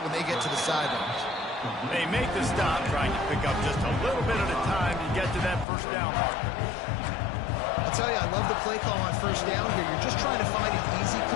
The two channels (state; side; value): drops out; right; at 5.7 s